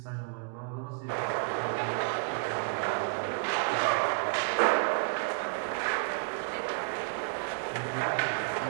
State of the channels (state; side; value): quieter; left; 40.0 dB